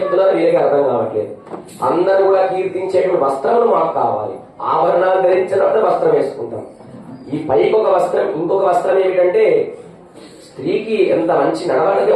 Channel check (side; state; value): both; identical; correlation 1.00